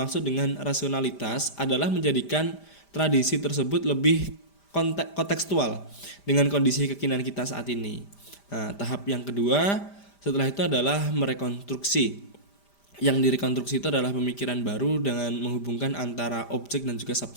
dengan rasionalitas adalah menjadikan tradisi tersebut lebih kontekstual dengan kondisi kekinian kita saat ini. Tahap yang kedua setelah itu adalah merekonstruksi. Yang direkonstruksi itu adalah pemikiran baru dengan menghubungkan antara objek dan juga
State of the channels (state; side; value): late; right; 5.0 ms